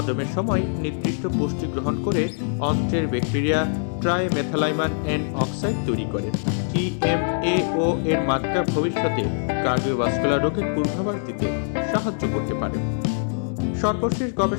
সময় নির্দিষ্ট পুষ্টি গ্রহণ করে অন্ত্রের ব্যাকটেরিয়া ট্রাইমেথালাইমান এন অক্সাইড তৈরি করে। টিএমএও এর মাত্রা ভবিষ্যতে কার্ডিওভাস্কুলার রোগের পূর্বাভাস দিতে সাহায্য করতে পারে। সর্বশেষ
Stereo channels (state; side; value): silent; right; digital silence